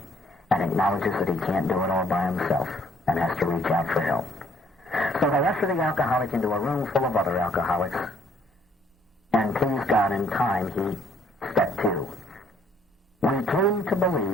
and acknowledges that he can't do it all by himself and has to reach out for help. So they usher the alcoholic into a room full of other alcoholics. And please God, in time, step two. We came to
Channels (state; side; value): normal; both; correlation 0.64